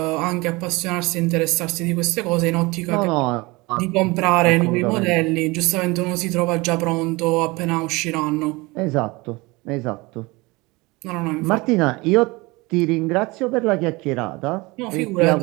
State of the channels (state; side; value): quieter; left; 23.7 dB